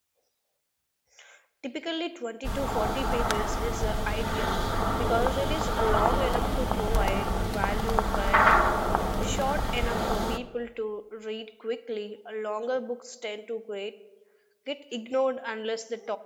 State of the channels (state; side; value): identical; both; correlation 1.00